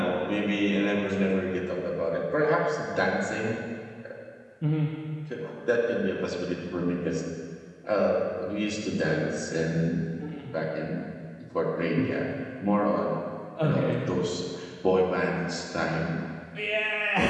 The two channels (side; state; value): both; identical; correlation 1.00